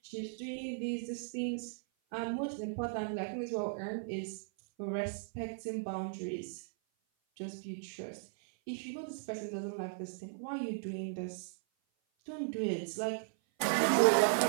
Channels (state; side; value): silent; left; 53 dB below the other